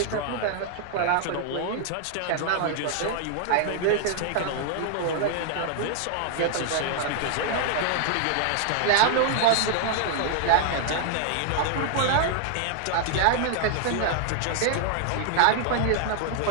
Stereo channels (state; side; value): different; both; correlation 0.00